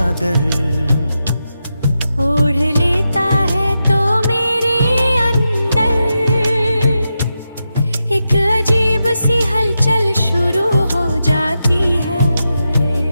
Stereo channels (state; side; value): inverted; both; correlation -0.88